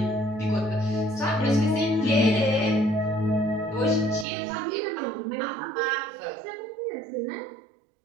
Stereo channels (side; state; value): left; drops out; at 4.2 s